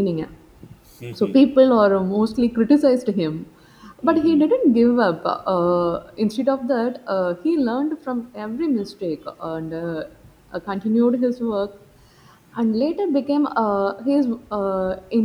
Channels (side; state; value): both; identical; correlation 1.00